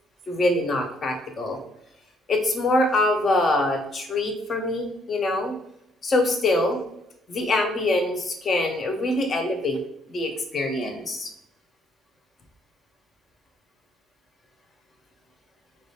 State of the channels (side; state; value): both; normal; correlation 0.68